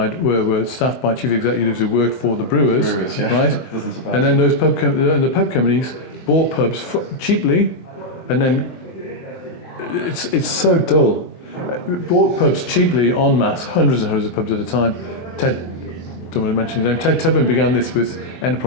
staffed by chief executives who worked for the brewers, right? And then those pub companies bought pubs cheaply, and then it's so dull. Bought pubs cheaply en masse, hundreds and hundreds of pubs at a time. Ted, don't want to mention his name. Ted Tubman began this with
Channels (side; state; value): right; late; 23 ms